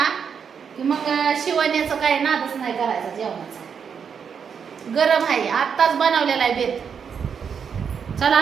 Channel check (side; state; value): left; quieter; 6.9 dB